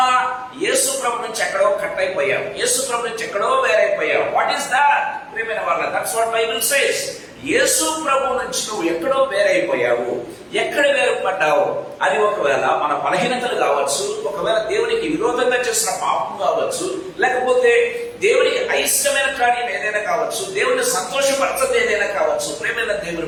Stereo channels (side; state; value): both; identical; correlation 1.00